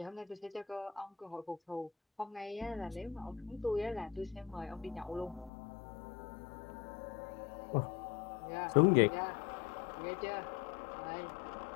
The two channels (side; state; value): right; drops out; at 5.5 s